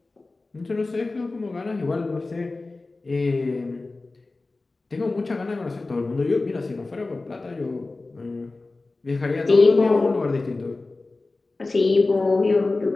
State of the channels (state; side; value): quieter; right; 3.4 dB